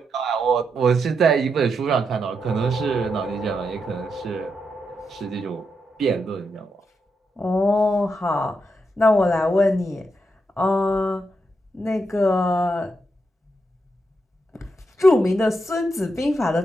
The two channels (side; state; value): both; normal; correlation 0.83